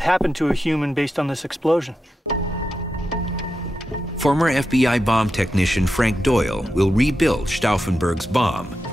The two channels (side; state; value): both; normal; correlation 0.89